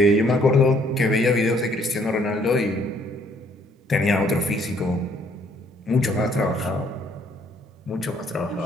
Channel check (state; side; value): normal; both; correlation 0.64